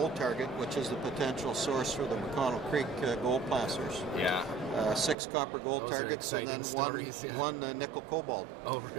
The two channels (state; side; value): drops out; left; at 5.2 s